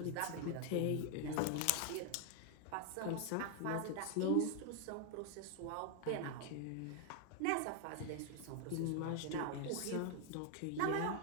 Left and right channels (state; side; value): different; both; correlation 0.00